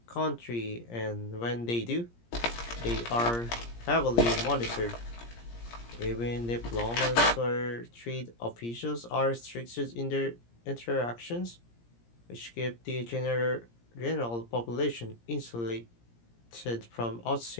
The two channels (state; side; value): late; right; 17 ms